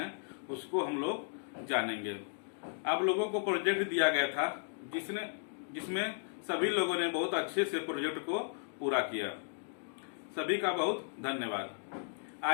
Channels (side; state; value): right; silent; digital silence